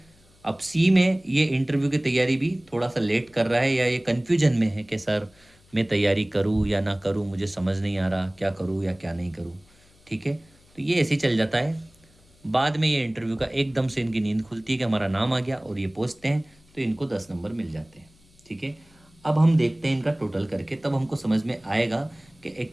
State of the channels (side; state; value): left; noise; hum, 30 dB below the sound